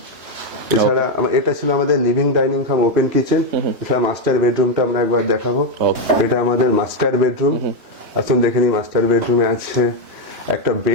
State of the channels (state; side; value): late; left; 3.1 ms